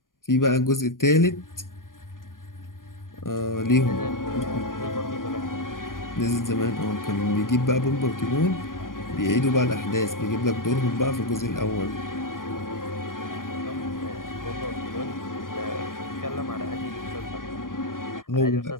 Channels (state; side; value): late; right; 0.90 ms